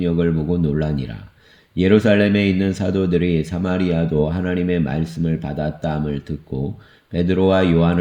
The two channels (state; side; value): identical; both; correlation 1.00